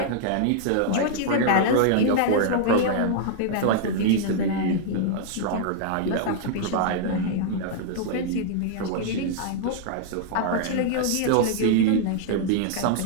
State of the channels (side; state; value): both; different; correlation -0.01